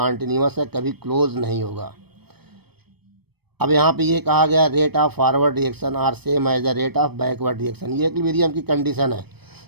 है, कभी क्लोज नहीं होगा। अब यहाँ पे ये कहा गया rate of forward reaction are same as the rate of backward reaction. ये इक्विलिब्रियम की कंडीशन है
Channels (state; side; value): late; left; 0.97 ms